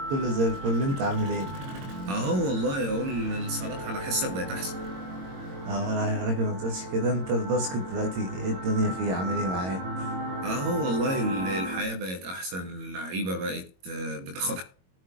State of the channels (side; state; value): left; late; 22 ms